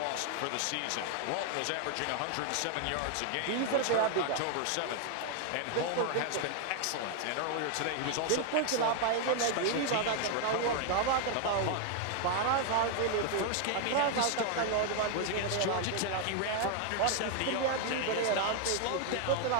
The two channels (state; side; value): different; both; correlation 0.00